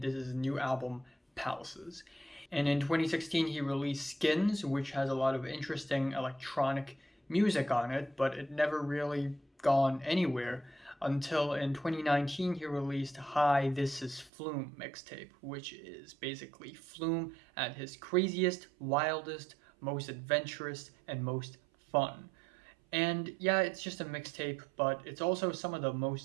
this is his new album, Palaces. And in 2016, he released Skins, which has a lot of interesting electronic music on it, but it never really gone anywhere until in 2019 he released Hi, This Is Flume mixtape, which is basically Flume at his craziest, wildest, most adventurous, and most fun. And yeah, it's just a mixtape, but it's also some of the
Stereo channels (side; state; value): left; drops out; at 14.3 s